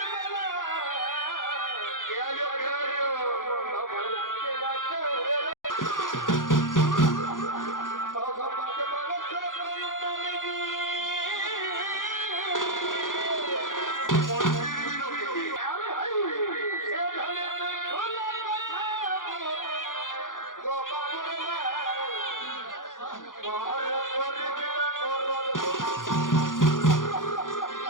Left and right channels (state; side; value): late; right; 0.89 ms